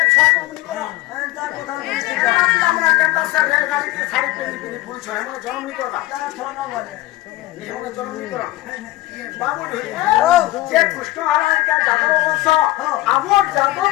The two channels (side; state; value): right; quieter; 17.0 dB